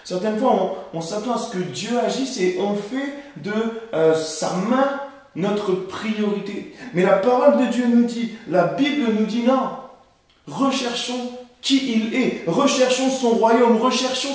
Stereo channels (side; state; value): both; identical; correlation 1.00